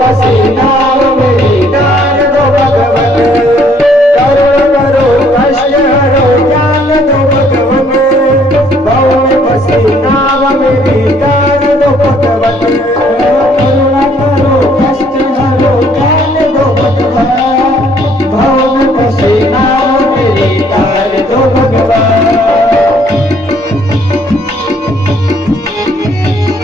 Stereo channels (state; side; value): normal; both; correlation 0.63